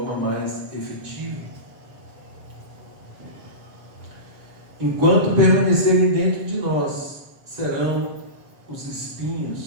mais efetiva. Enquanto permanecerem dentro de nós, serão os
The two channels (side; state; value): left; late; 7.4 ms